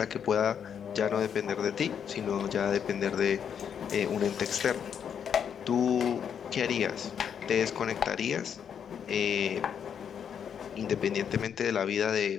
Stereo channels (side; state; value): right; quieter; 8.0 dB